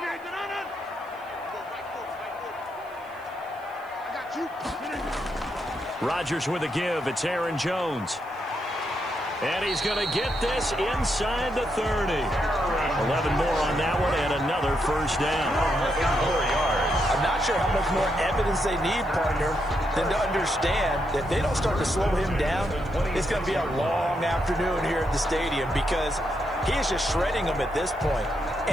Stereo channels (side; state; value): left; noise; hiss, 30 dB below the sound